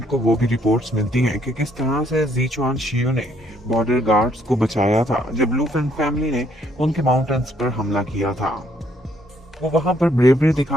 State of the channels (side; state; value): both; normal; correlation 0.68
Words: को वो भी रिपोर्ट्स मिलती हैं कि किस तरह से ज़ीचुआन शियू ने बॉर्डर गार्ड्स को बचाया था जब लू फेंग फैमिली ने उनके माउंटेन्स पर हमला किया था। वो वहां पर ब्रेवरी